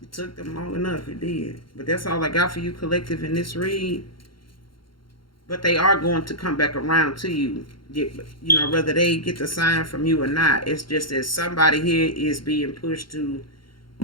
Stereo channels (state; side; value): late; right; 0.73 ms